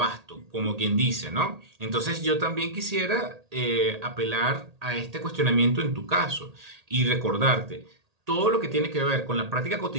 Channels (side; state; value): left; late; 1.8 ms